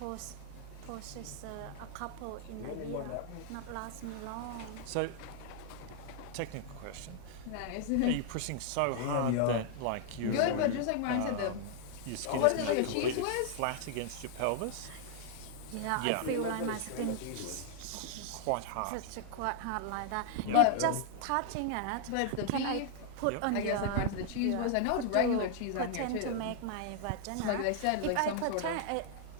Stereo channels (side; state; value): both; different; correlation -0.01